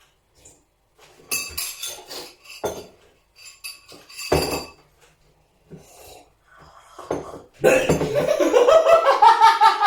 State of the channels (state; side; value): identical; both; correlation 1.00